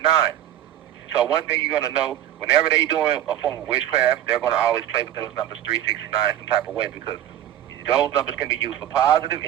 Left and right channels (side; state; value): left; quieter; 11.6 dB